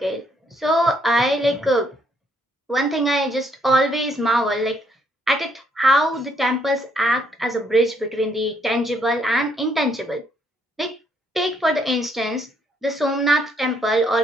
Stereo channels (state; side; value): normal; both; correlation 0.71